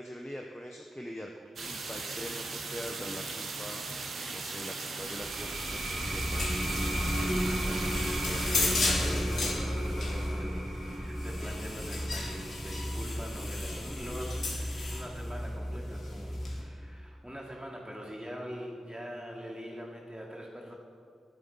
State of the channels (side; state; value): both; normal; correlation 0.89